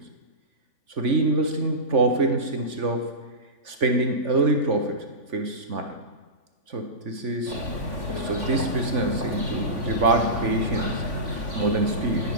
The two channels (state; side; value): late; left; 3.5 ms